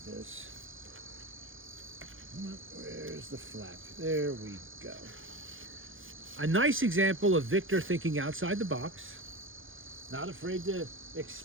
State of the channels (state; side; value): late; left; 0.58 ms